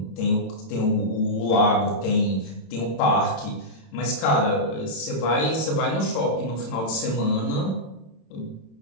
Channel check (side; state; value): right; late; 27 ms